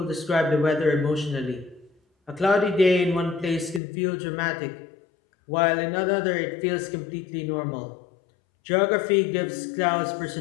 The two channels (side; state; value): right; drops out; at 3.8 s